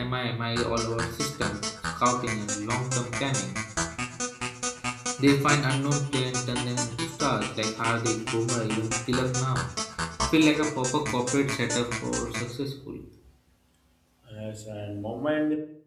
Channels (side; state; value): both; identical; correlation 1.00